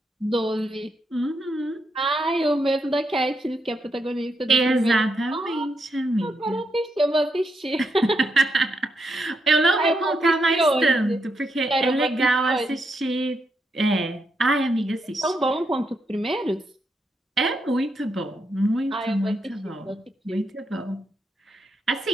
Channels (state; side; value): normal; both; correlation 0.81